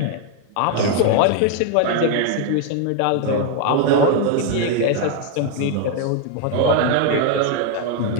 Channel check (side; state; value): both; different; correlation 0.01